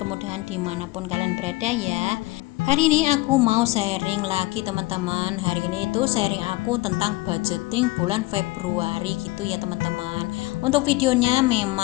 dimanapun kalian berada ya. Hari ini aku mau sharing lagi teman-teman. Hari ini itu sharing aku tentang budgeting bulan Februari gitu ya teman-teman. Untuk videonya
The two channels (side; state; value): right; quieter; 20.5 dB